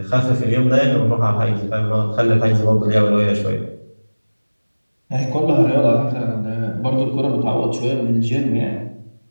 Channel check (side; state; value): both; inverted; correlation -1.00